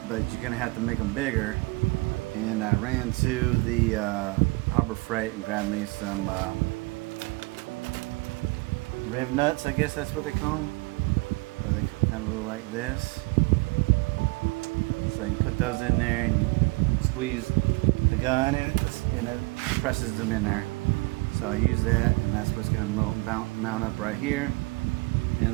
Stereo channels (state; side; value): quieter; left; 26.4 dB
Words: you're gonna have to make them bigger. And I ran to the Harbor Freight and grabbed me some riv nuts, I guess that's what they call them. Where they kind of look like this. So you put those in there and you squeeze the gun, and it presses them in there. So I use that, and that's what's going to mount up right here.